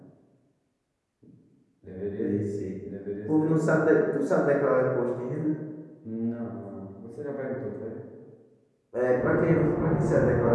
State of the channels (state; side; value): identical; both; correlation 1.00